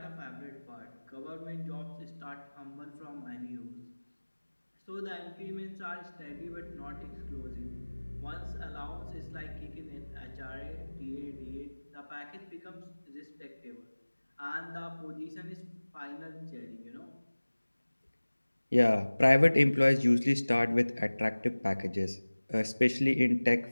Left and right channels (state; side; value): inverted; both; correlation -1.00